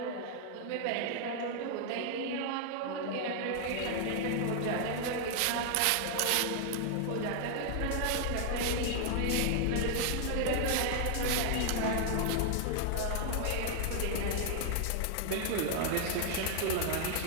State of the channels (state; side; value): different; both; correlation 0.00